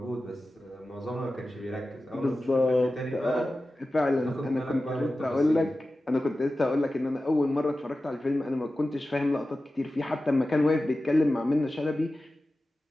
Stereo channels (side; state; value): both; normal; correlation 0.94